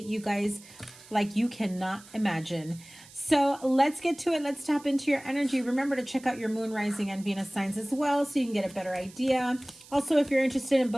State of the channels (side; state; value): right; noise; hiss, 22 dB below the sound